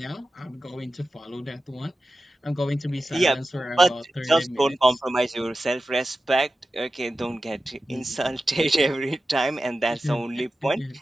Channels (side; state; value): both; normal; correlation 0.93